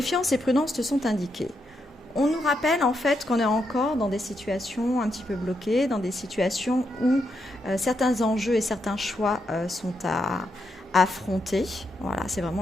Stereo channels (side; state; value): both; normal; correlation 0.82